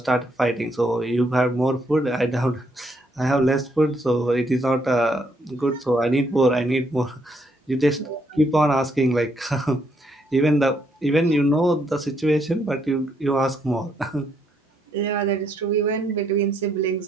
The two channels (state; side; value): normal; both; correlation 0.73